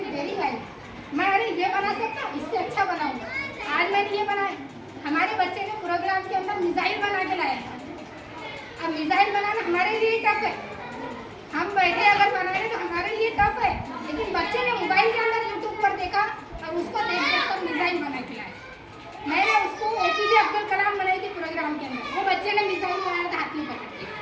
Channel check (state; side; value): identical; both; correlation 1.00